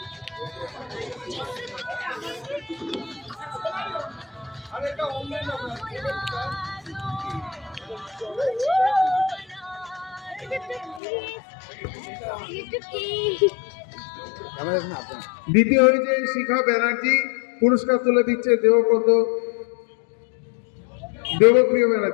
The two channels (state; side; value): drops out; right; at 11.0 s